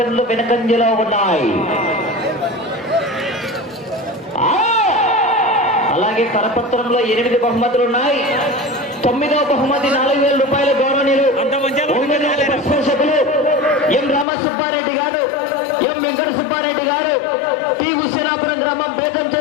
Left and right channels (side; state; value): right; drops out; at 14.2 s